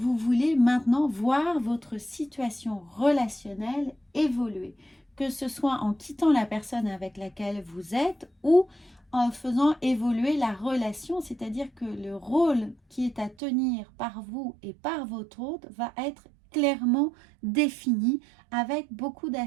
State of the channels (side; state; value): left; drops out; at 13.4 s